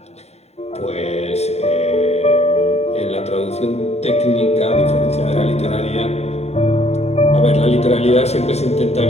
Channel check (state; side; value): late; right; 0.31 ms